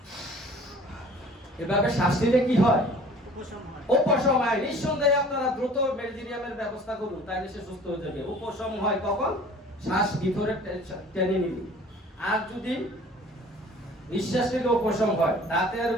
এভাবে শ্বাস নিলে কি হয়? উপশম হয়। নিঃসন্দেহে আপনারা দ্রুত মেজিরিয়ামের ব্যবস্থা করুন, তাইলে সে সুস্থ হয়ে যাবে। উপশম হয় কখন? শ্বাস ভিতরে টেনে নিবি। আর যদি নিঃশ্বাস নিলে উপশম হয়, দাঁতের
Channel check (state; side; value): normal; both; correlation 0.48